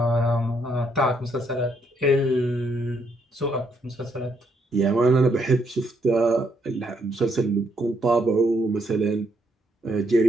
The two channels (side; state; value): both; normal; correlation 0.74